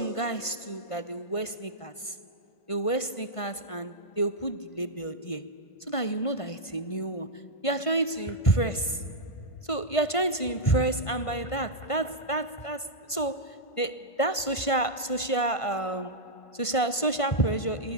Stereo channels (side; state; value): right; late; 1.5 ms